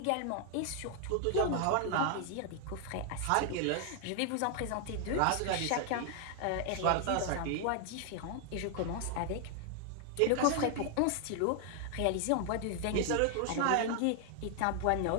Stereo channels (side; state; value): both; different; correlation 0.00